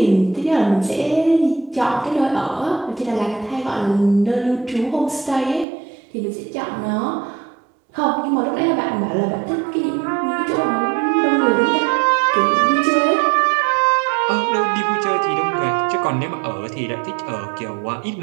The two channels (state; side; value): drops out; left; at 5.7 s